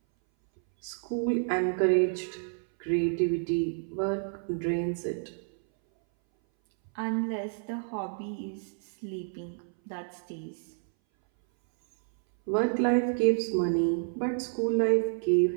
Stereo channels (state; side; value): silent; left; 58 dB below the other